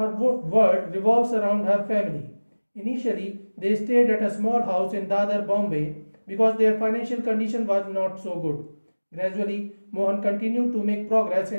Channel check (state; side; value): inverted; both; correlation -1.00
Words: world revolves around her family. Initially, they stayed at a small house in Dadar, Bombay because their financial condition was not so good. Gradually, Mohan continued to make progress